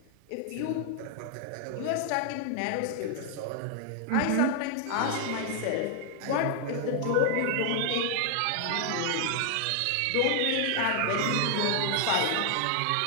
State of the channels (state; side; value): different; both; correlation 0.00